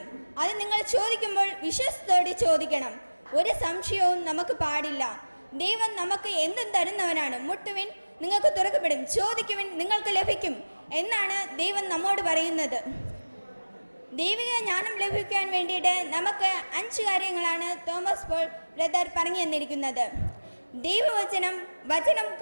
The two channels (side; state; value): both; inverted; correlation -1.00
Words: അത് നിങ്ങൾ ചോദിക്കുമ്പോൾ വിശ്വാസത്തോടെ ചോദിക്കണം. ഒരു സംശയവും നമുക്ക് പാടില്ല. ദൈവം നമുക്ക് എന്തും തരുന്നവനാണ്. മുട്ടുവിൻ, നിങ്ങൾക്ക് തുറക്കപ്പെടും. ചോദിക്കുവിൻ, നിങ്ങൾക്ക് ലഭിക്കും എന്നാണ് ദൈവം നമ്മോട് പറയുന്നത്. ദൈവിക ജ്ഞാനം ലഭിക്കാൻ വേണ്ടിയിട്ട് നമുക്ക് 5 കാര്യങ്ങളാണ് തോമസ് പോൾ ബ്രദർ പറഞ്ഞു തന്നിരിക്കുന്നത്. വചനം